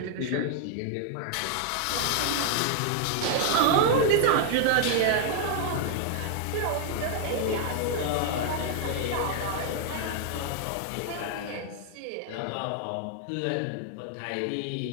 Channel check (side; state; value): both; different; correlation 0.00